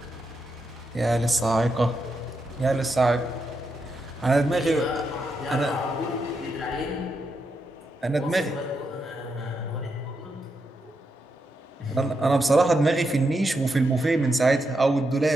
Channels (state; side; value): normal; both; correlation 0.83